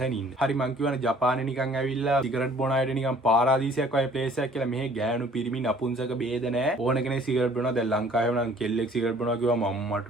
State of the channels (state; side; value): normal; both; correlation 0.55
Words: ඉන්න. හරි මං කියවනේ ජපානේ නිකන් ඇවිල්ලා සිගරට් බොන අයට නිකන් පාරාදීසයක් වගේ ප්ලේස් එකක් කියලා. මෙහෙ ගෑනු පිරිමි නපුංසක බේද නෑ. ඕන කෙනෙක් සිගරට් බොනවා. දැන් ලංකාවේ නම් කෙල්ලෙක් සිගරට් බොනවා කිව්වම මම්මට